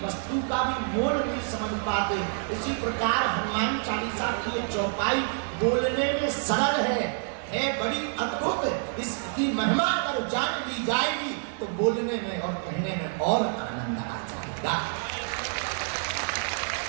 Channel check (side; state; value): left; silent; 60 dB below the other